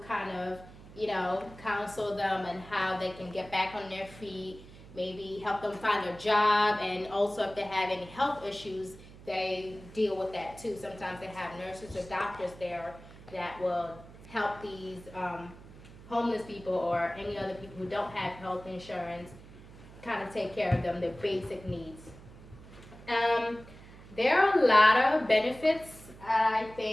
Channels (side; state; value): right; noise; hum, 19 dB below the sound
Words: kind of, counsel them and how they can get back on their feet, maybe help them find a job, and also if they have any health issues, they deal with that too. Sometimes they have nurses or doctors there that will help these homeless people or any other people who don't have health insurance kind of take care of them, their basic needs. There are a lot of benefits, I